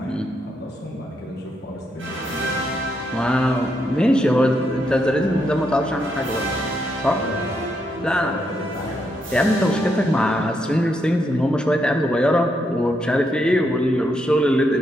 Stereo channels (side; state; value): both; normal; correlation 0.79